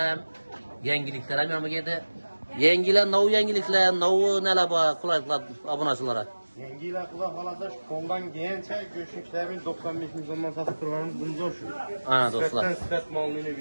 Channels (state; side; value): inverted; both; correlation -1.00